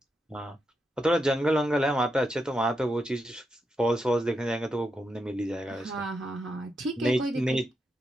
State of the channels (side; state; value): both; normal; correlation 0.84